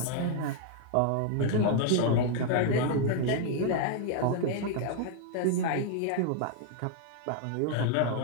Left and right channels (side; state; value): both; different; correlation 0.00